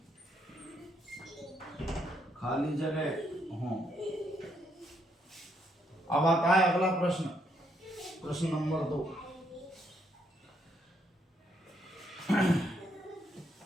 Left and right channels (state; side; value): normal; both; correlation 0.74